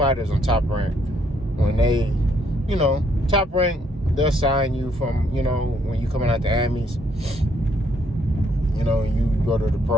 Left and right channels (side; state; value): both; normal; correlation 0.70